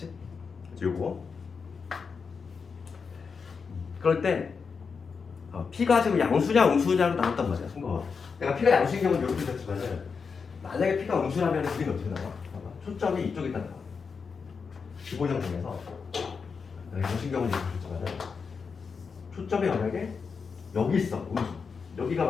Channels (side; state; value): right; quieter; 5.5 dB